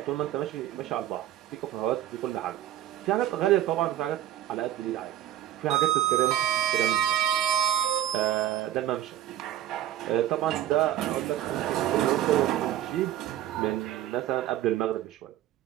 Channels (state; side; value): quieter; left; 12.5 dB